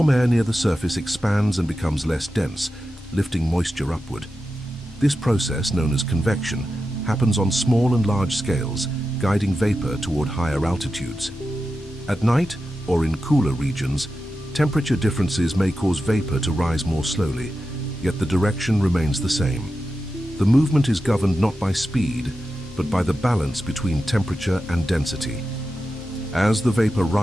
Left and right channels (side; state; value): both; normal; correlation 0.91